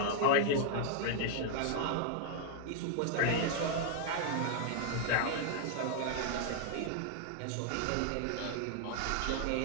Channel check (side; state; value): both; different; correlation 0.00